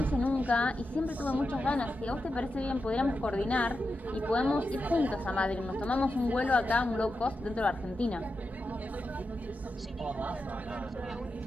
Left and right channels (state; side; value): normal; both; correlation 0.89